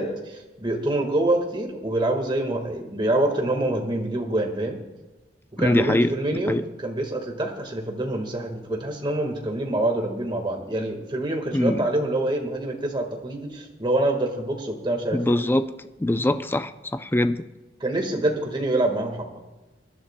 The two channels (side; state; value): both; normal; correlation 0.67